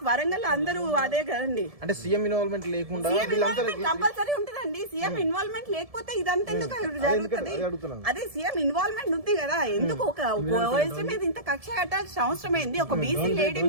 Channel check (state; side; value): late; left; 1.7 ms